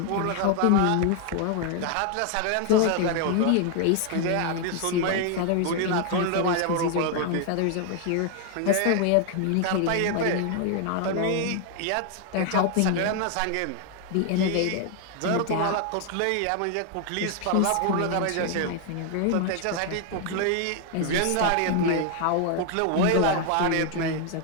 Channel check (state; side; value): different; both; correlation 0.00